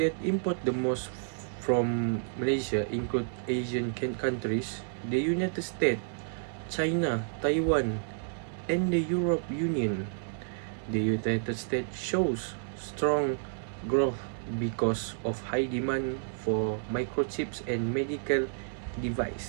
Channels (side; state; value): left; silent; digital silence